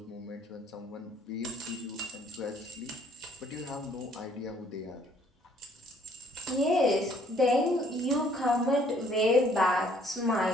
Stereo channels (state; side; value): normal; both; correlation 0.62